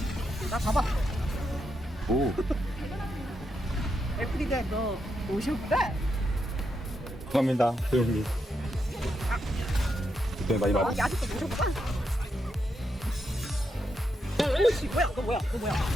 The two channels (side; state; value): both; normal; correlation 0.82